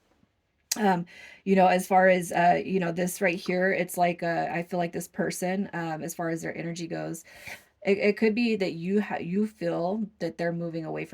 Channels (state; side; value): identical; both; correlation 1.00